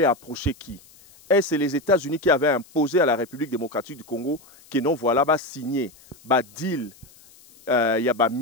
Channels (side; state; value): left; noise; hiss, 26 dB below the sound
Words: approché qui. Est-ce les États-Unis qui avaient imposé à la République démocratique du Congo que non voilà ba signé ba deal ya ba